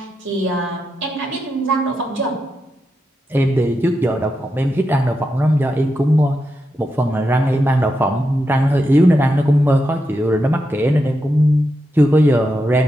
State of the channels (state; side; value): normal; both; correlation 0.86